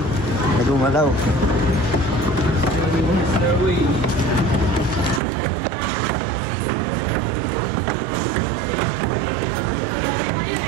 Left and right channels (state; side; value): drops out; left; at 5.2 s